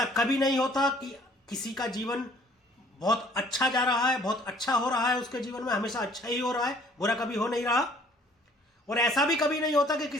कभी नहीं होता कि किसी का जीवन बहुत अच्छा जा रहा है, बहुत अच्छा हो रहा है, उसके जीवन में हमेशा अच्छा ही हो रहा है, बुरा कभी हो नहीं रहा। और ऐसा भी कभी नहीं होता कि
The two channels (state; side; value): normal; both; correlation 0.56